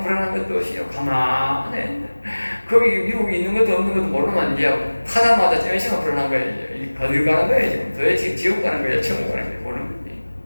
것도 없이 가만히 거기 미국이 있는 것도 없는 것도 모르면 이제 타자마자 몇 시간 불안한 거예요. 어딜 가는 거예요 지금? 도대체 지옥 가는 거예요? 천국 가는 거예요? 모르는 거지.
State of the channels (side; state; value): both; inverted; correlation -1.00